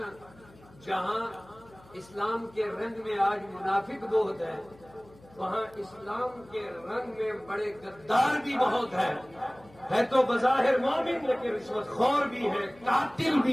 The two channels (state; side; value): noise; left; hum, 25 dB below the sound